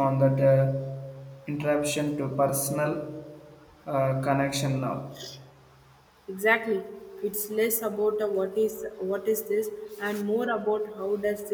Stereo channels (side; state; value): both; identical; correlation 1.00